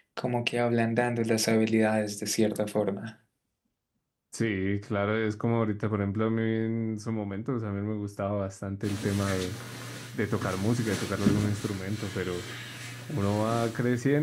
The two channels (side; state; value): both; identical; correlation 1.00